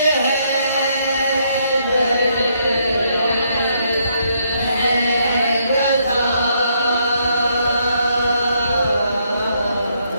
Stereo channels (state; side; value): inverted; both; correlation -0.73